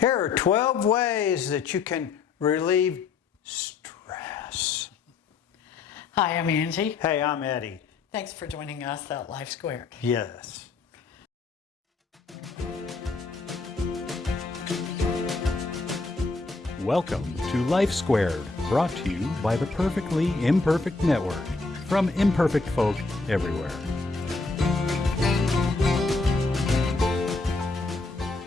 are 12 ways that you can relieve stress. Hi, I'm Angie. Hey, I'm Eddie. Thanks for joining us at Life Squared. Yes. Welcome to Life Squared, brought to you by the Perfectly Imperfect Network, from imperfect folk everywhere.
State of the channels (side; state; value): right; quieter; 4.0 dB